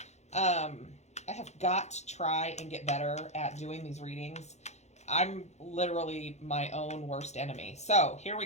I have got to try and get better at doing these readings. I'm literally my own worst enemy. So here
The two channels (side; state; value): right; late; 0.33 ms